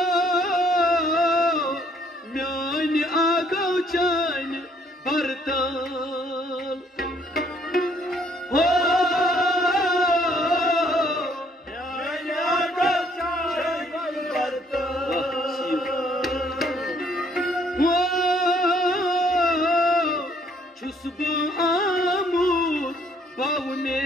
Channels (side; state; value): both; normal; correlation 0.65